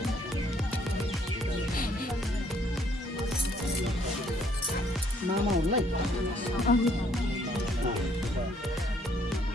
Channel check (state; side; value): normal; both; correlation 0.65